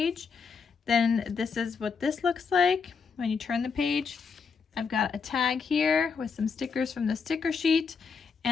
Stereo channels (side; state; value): right; quieter; 5.6 dB